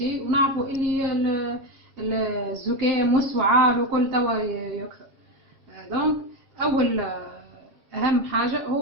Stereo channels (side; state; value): left; late; 7.4 ms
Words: ونعرفوا اللي الزكام والسعال وكل توا يكثر. دونك أول أهم حاجة